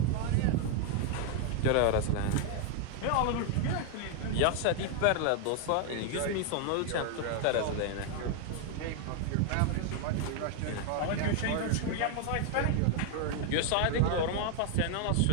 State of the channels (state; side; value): different; both; correlation 0.00